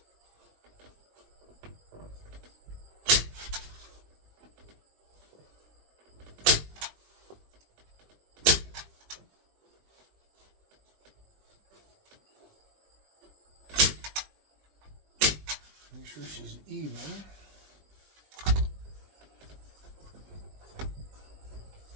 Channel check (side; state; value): left; late; 20 ms